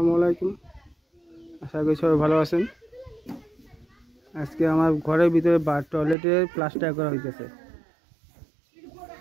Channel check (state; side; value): drops out; left; at 6.2 s